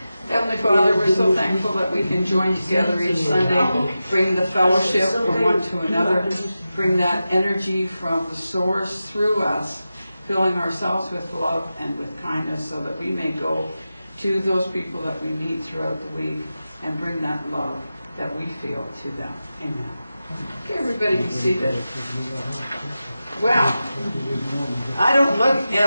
Heavenly Father, we're so thankful that we can join together each Sunday, bring the fellowship from one to another, bring that energy from the source through us, filling ourselves with love and with kindness so that we may go to those people that we meet throughout the week and bring that love that we feel to them. Amen. Okay, everybody be seated. Well, I don't look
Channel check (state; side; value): inverted; both; correlation -0.93